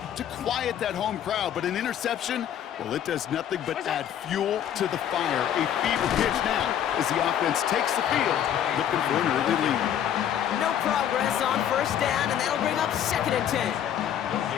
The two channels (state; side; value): quieter; right; 10.0 dB